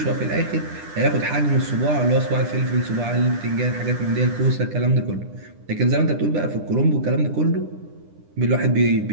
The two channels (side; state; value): left; late; 10 ms